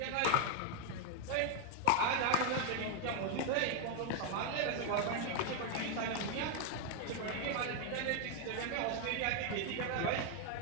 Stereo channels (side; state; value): both; different; correlation 0.00